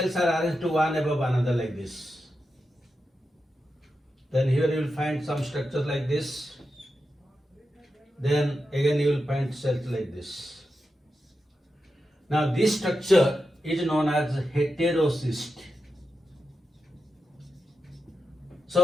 are arranged to one above another like this. Then here you will find some structures like this. Then again you will find cells like this. Now this structure is known as heterocyst.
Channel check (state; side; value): normal; both; correlation 0.89